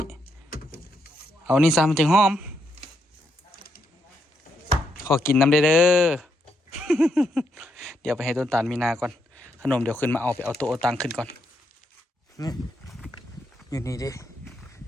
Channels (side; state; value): both; normal; correlation 0.79